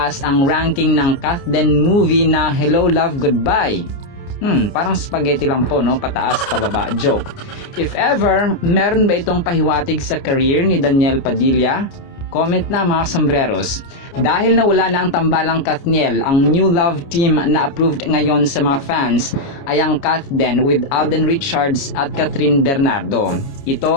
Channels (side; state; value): right; late; 29 ms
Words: ang ranking ng Kathden movie na Hello Love Goodbye. Parang spaghetti lang po, no? Pataas, pababa. Joke. If ever, meron ba itong pahiwatig sa career ni Daniel Padilla? Comment na mga sombreros. Dahil nawala na ang tambalang Kathniel, ang new love team na approved ngayon sa mga fans ay ang Kathden with Alden Richards at Catherine Bernardo. Ito